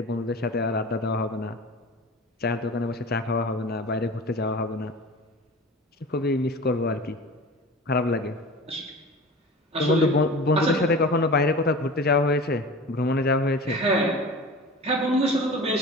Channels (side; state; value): both; normal; correlation 0.36